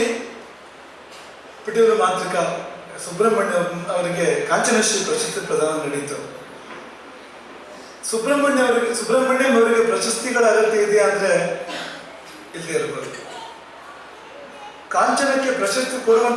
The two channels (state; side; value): identical; both; correlation 1.00